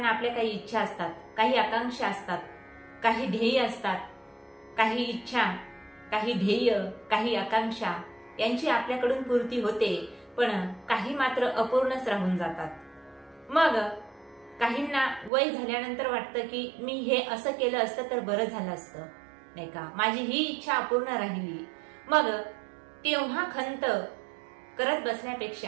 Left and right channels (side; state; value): left; drops out; at 15.3 s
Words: आपल्या काही इच्छा असतात, काही आकांक्षा असतात, काही ध्येय असतात। काही इच्छा, काही ध्येय, काही आकांक्षा यांची आपल्याकडून पूर्ती होते, पण काही मात्र अपूर्णच राहून जातात। मग काहींना वय झाल्यानंतर वाटतं की मी हे असं केलं असतं तर बरं झालं असतं, नाही का, माझी ही इच्छा अपूर्ण राहिली। मग तेव्हा खंत करत